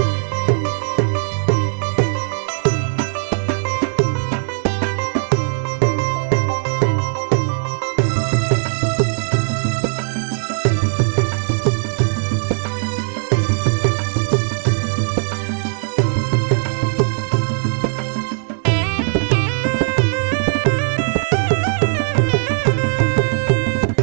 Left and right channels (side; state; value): left; silent; digital silence